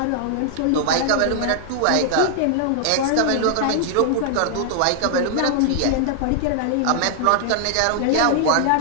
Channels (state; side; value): different; both; correlation -0.01